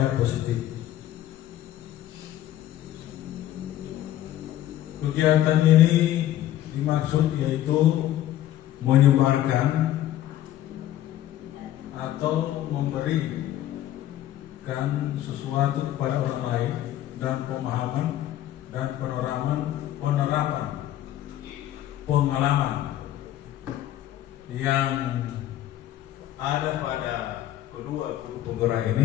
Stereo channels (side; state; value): right; quieter; 13.0 dB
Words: positif. Kegiatan ini dimaksud yaitu menyebarkan atau memberikan sesuatu kepada orang lain dan pemahaman dan penerapan pengalaman yang ada pada kedua guru penggerak